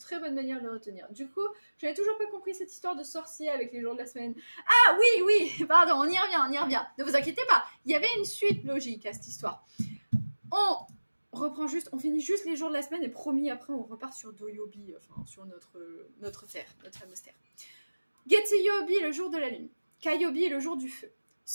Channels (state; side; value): inverted; both; correlation -1.00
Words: bonne manière de le retenir. Du coup, j'avais toujours pas compris cette histoire de sorcier avec les jours de la semaine. Ah oui, pardon, on y revient. Ne vous inquiétez pas, il y avait une suite logique à cette histoire. On finit juste les jours de la semaine et promis, après, on repart sur Doyobi, enfin, sur notre terre, notre fameuse terre. Getsuyobi, le jour de la lune. Kayobi, le jour du feu.